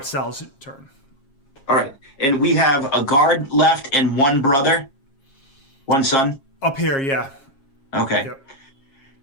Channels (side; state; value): right; late; 7.4 ms